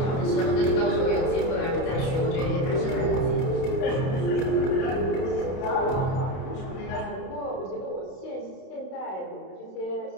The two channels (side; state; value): right; late; 31 ms